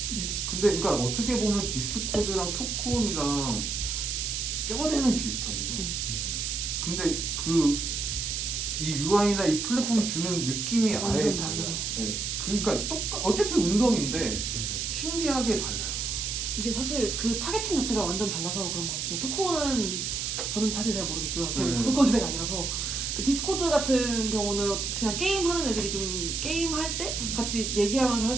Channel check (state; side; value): noise; right; hiss, 2 dB below the sound